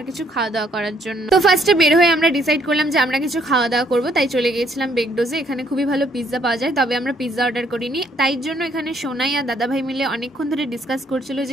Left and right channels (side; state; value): both; normal; correlation 0.68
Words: কিছু খাওয়া দাওয়া করার জন্য। তো ফার্স্টে বের হয়ে আমরা ডিসাইড করলাম যে আমরা কিছু খাওয়া দাওয়া করবো, তাই চলে গিয়েছিলাম বেগডোজে। এখানে খুবই ভালো পিৎজা পাওয়া যায়, তবে আমরা পিৎজা অর্ডার করিনি। তাই জন্য এখানে সোনাই আর দাদাভাই মিলে অনেকক্ষণ ধরে ডিসকাস করছিল